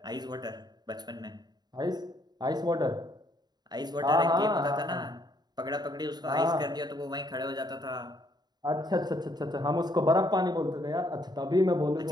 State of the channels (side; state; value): left; late; 0.20 ms